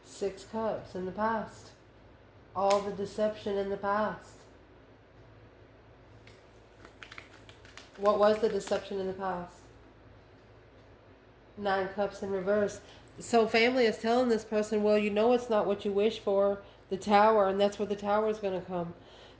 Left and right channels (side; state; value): both; identical; correlation 1.00